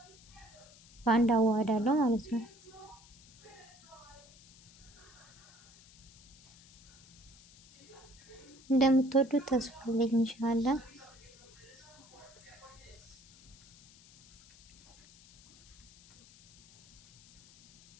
በአንድ አዋህዳለሁ ማለት ነው። እንደምትወዱት ተስፋ አለኝ ኢንሻአላህ።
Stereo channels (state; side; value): noise; left; hiss, 24 dB below the sound